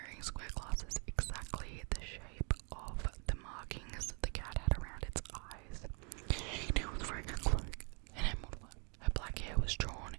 square glasses exactly the shape of the markings the cat had around its eyes. She was wearing a cloak and her black hair was drawn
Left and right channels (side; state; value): left; quieter; 36.5 dB